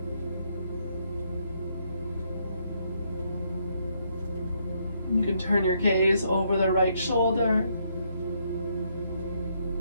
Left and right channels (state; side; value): inverted; both; correlation -0.74